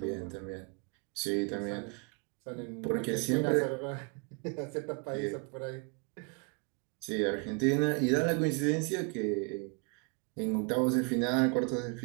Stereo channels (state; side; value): quieter; left; 34.4 dB